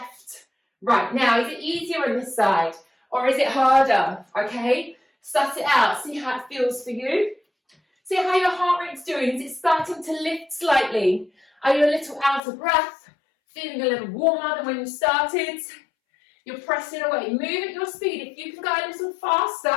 right. Now, is it easier on this side or is it harder? Okay, suss it out. See how it feels for you. See how your heart rate's doing. Is it starting to lift slightly? Are you a little out of breath? Feeling a little warmer than when you started? You're pressing away. Move at your speed. If you can go a little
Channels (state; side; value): drops out; right; at 12.4 s